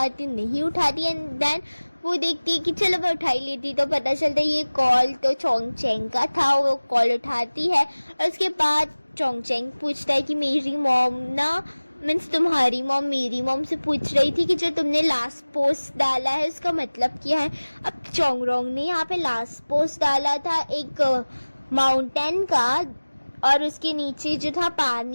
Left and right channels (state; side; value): inverted; both; correlation -1.00